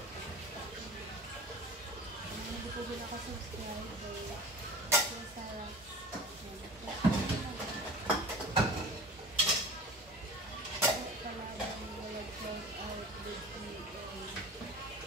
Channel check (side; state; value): both; normal; correlation 0.39